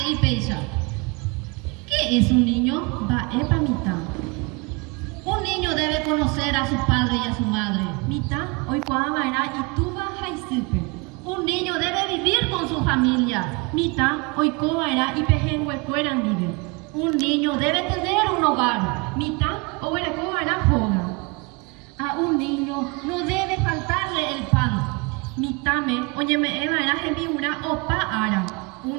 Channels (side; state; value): left; quieter; 28.9 dB